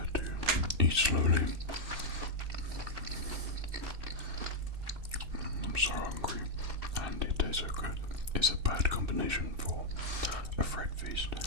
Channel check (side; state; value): left; late; 2.6 ms